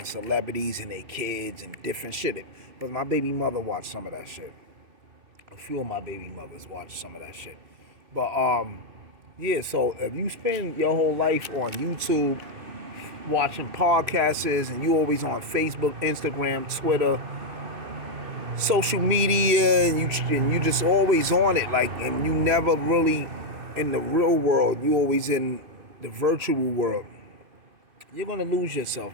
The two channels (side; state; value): left; late; 3.0 ms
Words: celebrities and their kids and different shit. But my baby mother watched some of that shit. A few of my baby mothers watched some of that shit. But yeah, so if you spend your whole life on YouTube watching podcasts, and you always on Facebook, Instagram, Twitter, social media, and you just always on it, like, and you never really in the real world, you always in the virtual world, you're gonna lose